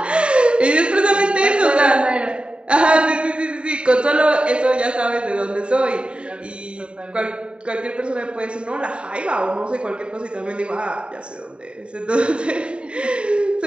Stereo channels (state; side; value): late; left; 0.054 ms